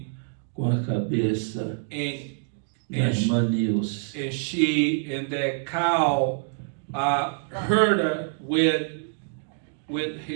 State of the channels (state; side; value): silent; left; digital silence